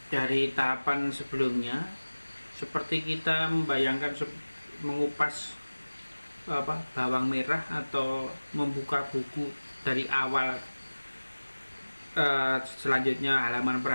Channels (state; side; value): inverted; both; correlation -1.00